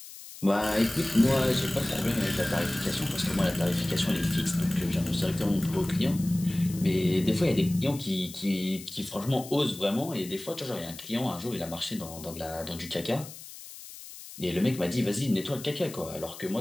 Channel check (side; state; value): left; noise; hiss, 15 dB below the sound